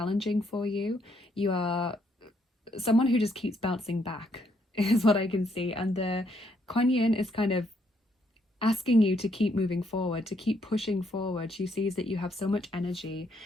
for you. You are someone who just keeps bouncing back, is what I can see. And the Kuan Yin is kind of asking you to keep moving forward, to keep pushing forward. She sees that you have so much energy,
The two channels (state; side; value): normal; both; correlation 0.72